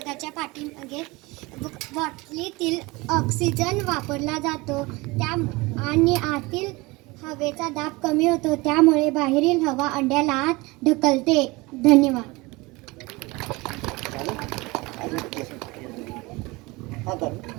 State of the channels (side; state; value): left; quieter; 23.3 dB